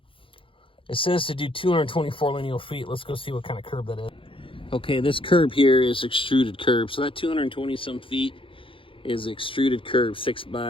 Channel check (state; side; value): late; right; 0.25 ms